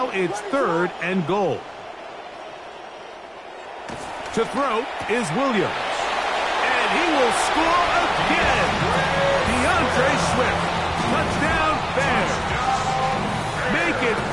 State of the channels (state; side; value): identical; both; correlation 1.00